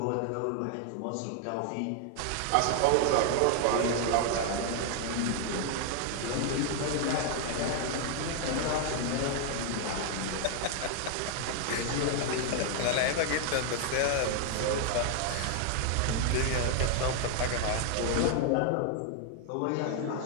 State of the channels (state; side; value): different; both; correlation 0.00